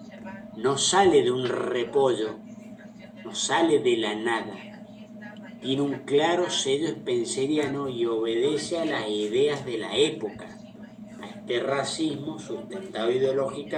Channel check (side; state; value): both; identical; correlation 1.00